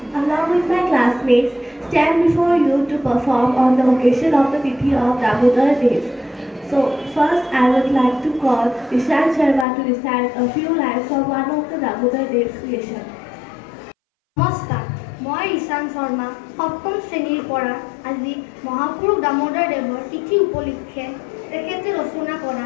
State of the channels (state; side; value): drops out; right; at 9.7 s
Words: stand before you to perform on the occasion of the Tithi of Damodar Days. So, first I would like to call Ishan Sharma to recite a few lines from one of the Damodar Days creation. নমস্কাৰ, মই ঈশান শৰ্মা সপ্তম শ্ৰেণীৰ পৰা আজি মহাপুৰুষ দামোদৰ দেৱৰ তিথি উপলক্ষে তেখেতে ৰচনা কৰা